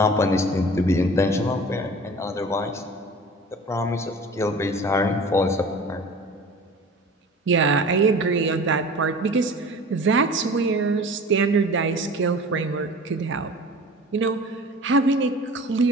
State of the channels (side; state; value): both; normal; correlation 0.40